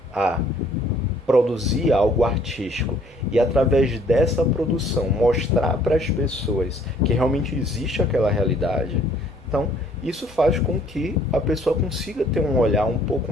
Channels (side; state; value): right; noise; rumble, 27 dB below the sound